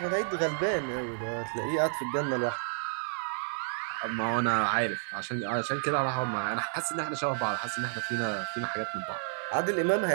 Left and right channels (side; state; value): left; silent; 57 dB below the other